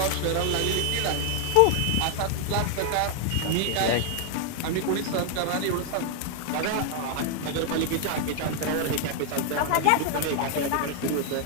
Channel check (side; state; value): both; different; correlation 0.00